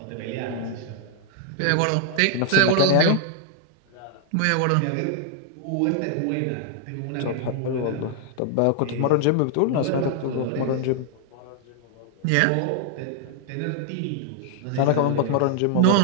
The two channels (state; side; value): different; both; correlation 0.00